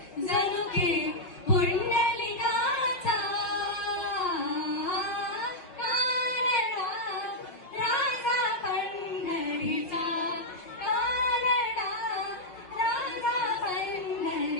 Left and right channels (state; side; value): late; right; 5.5 ms